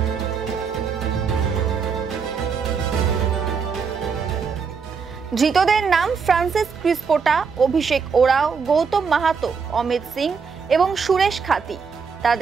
ধৃতদের নাম ফ্রান্সিস ক্রিসপোটা, অভিষেক ওরাও, গৌতম মাহাতো, অমিত সিং এবং সুরেশ খাতি।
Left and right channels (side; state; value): left; quieter; 5.7 dB